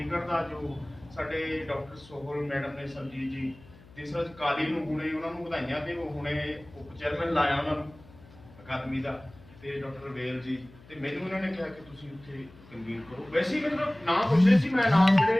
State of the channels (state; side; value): noise; left; hum, 23 dB below the sound